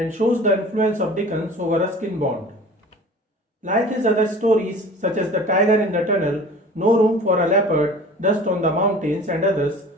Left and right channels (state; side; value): normal; both; correlation 0.42